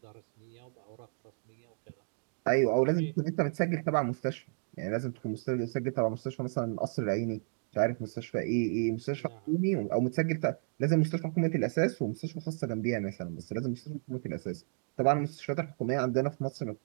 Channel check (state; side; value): silent; left; digital silence